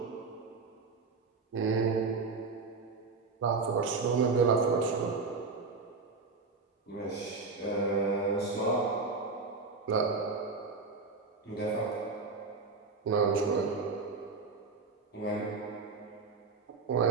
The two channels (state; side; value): quieter; left; 4.3 dB